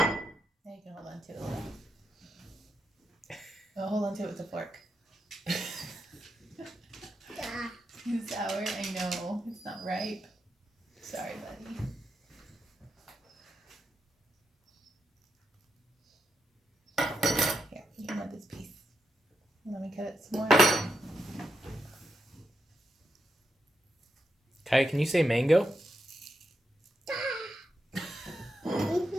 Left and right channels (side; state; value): both; normal; correlation 0.84